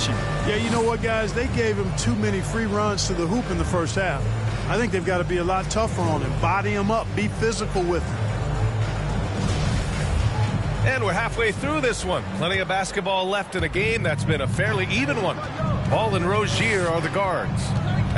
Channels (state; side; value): identical; both; correlation 1.00